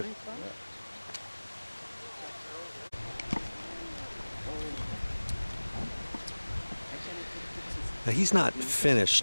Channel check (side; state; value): both; inverted; correlation -1.00